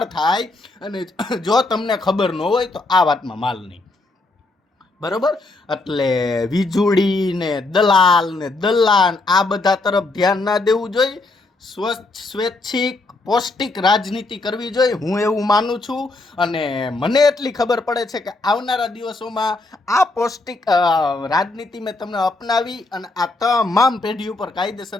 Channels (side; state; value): right; quieter; 3.1 dB